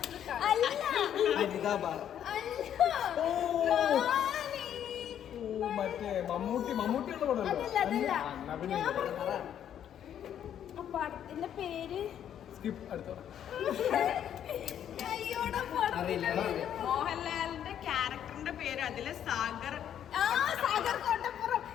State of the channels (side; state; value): right; quieter; 9.8 dB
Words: മറ്റേ മമ്മൂട്ടിയുള്ള പടമല്ലേ? ആ പടത്തിന്റെ പേര് സ്കിപ്പ് അടുത്ത. മോഹൻലാലിന്റെ ക്യാരക്ടറിന്റെ പേര് അതില് സാഗർ.